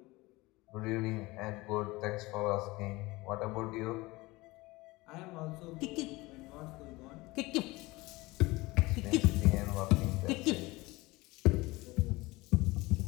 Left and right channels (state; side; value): quieter; right; 21.5 dB